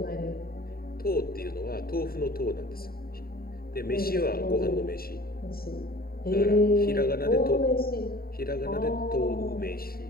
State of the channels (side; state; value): right; late; 0.43 ms